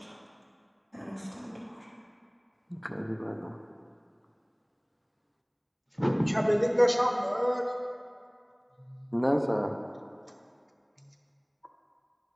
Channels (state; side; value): identical; both; correlation 1.00